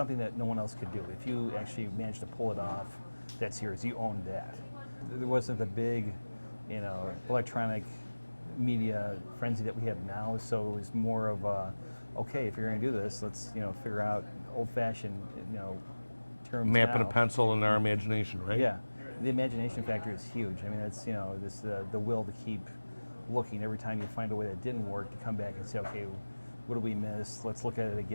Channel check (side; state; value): both; inverted; correlation -1.00